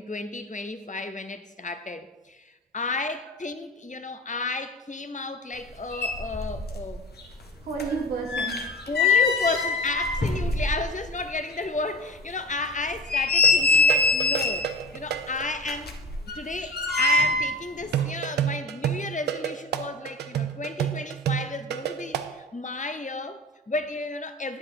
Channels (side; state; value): both; normal; correlation 0.32